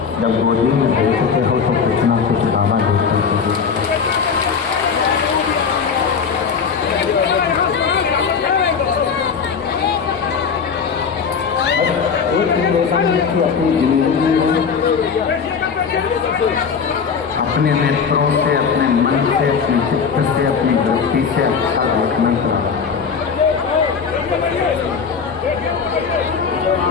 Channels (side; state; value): right; quieter; 6.1 dB